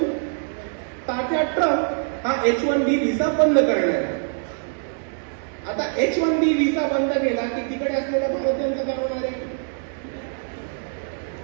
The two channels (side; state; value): left; silent; 63 dB below the other